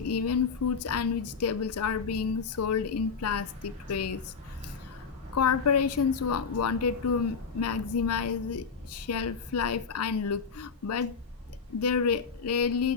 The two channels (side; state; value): right; quieter; 5.6 dB